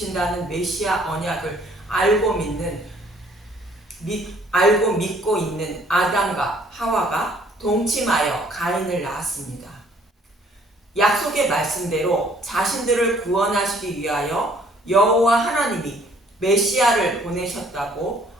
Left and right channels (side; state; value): both; normal; correlation 0.60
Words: 메시아 언약을 알고 믿고 있는 아담과 하와가 동침하여 가인을 낳았습니다. 약속의 말씀대로 자신들을 구원하시기 위하여 여호와 하나님이 메시아를 보내셨다고